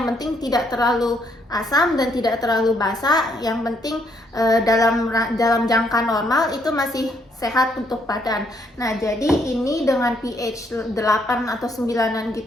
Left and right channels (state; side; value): normal; both; correlation 0.71